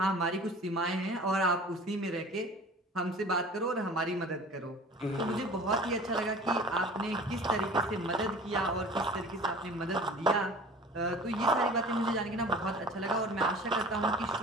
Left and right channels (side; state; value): both; normal; correlation 0.42